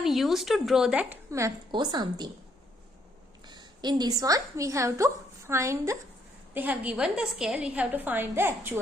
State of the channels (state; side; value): normal; both; correlation 0.71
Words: used to draw that map or something. In this one we have to find the, they have given the scale, we have to find the